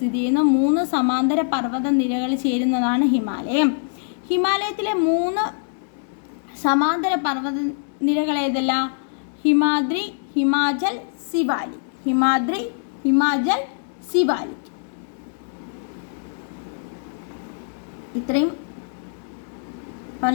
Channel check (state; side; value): silent; right; digital silence